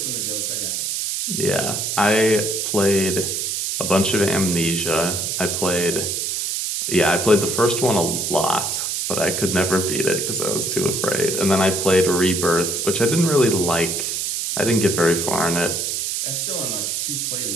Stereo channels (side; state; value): right; noise; hiss, 1 dB below the sound